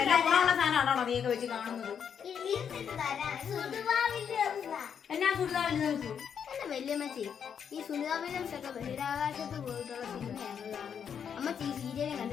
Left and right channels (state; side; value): quieter; right; 7.7 dB